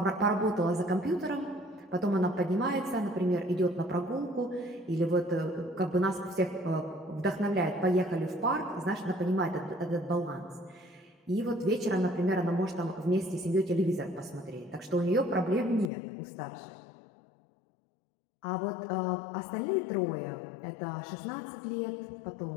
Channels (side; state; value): right; drops out; at 15.9 s